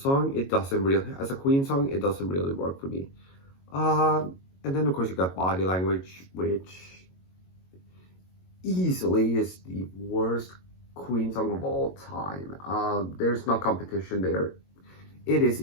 it doesn't really, as a Queen song, it doesn't really work for me. And then of course you got Body Language, which, easily is the worst Queen song of all time. There's no competition there. It is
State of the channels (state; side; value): late; right; 22 ms